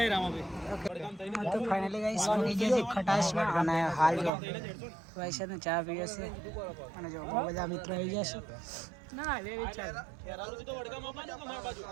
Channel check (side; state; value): left; drops out; at 4.3 s